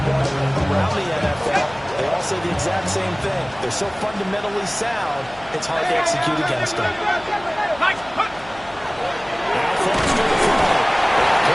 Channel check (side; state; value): left; noise; hum, 21 dB below the sound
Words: around the NFL, they all say the exact same thing. They're so fundamentally sound, it's hard to execute against them.